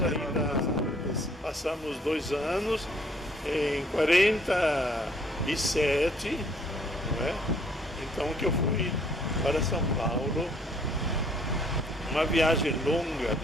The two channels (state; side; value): normal; both; correlation 0.62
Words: ainda passamos 2 anos, em 47, não é? Então que eu fui para São Paulo, uma viagem longa